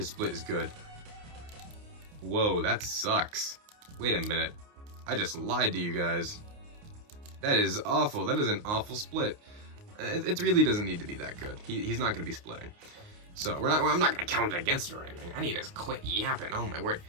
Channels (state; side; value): late; left; 29 ms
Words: split is good. Whoa, that sucks. Wait a minute. I just lied to you guys. That is awful. That is an awful split. It really doesn't need to be that good. He's not going to be splitting. So, I'm not going to count it against her or anything. I need to quit yapping. Oh my word.